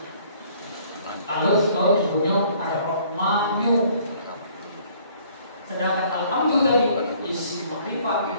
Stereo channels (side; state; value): both; inverted; correlation -0.59